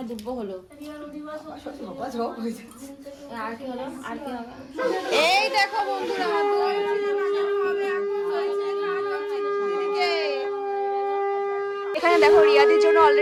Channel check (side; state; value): both; identical; correlation 1.00